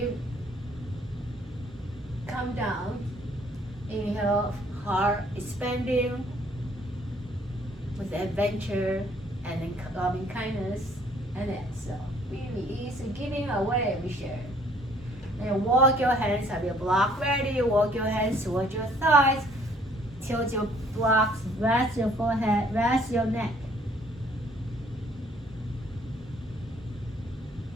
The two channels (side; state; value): both; normal; correlation 0.61